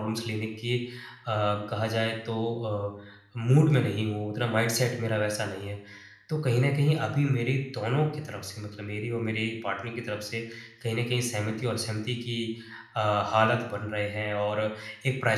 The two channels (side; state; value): both; identical; correlation 1.00